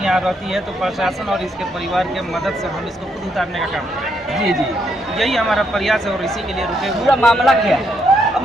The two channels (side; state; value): both; normal; correlation 0.76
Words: यहाँ रहती है, तो प्रशासन और इसके परिवार के मदद से हम इसको खुद उतारने का काम करें। जी जी, यही हमारा प्रयास है और इसी के लिए रुके हुए। पूरा मामला क्या है?